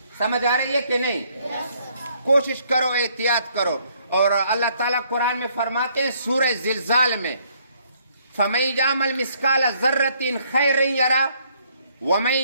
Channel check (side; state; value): both; inverted; correlation -0.67